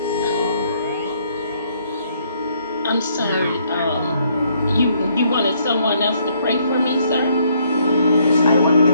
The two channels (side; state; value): both; inverted; correlation -0.69